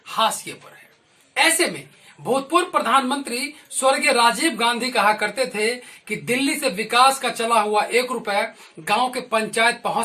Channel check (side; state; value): both; identical; correlation 1.00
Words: हाशिए पर है। ऐसे में भूतपूर्व प्रधानमंत्री स्वर्गीय राजीव गांधी कहा करते थे कि दिल्ली से विकास का चला हुआ 1 रुपया गांव के पंचायत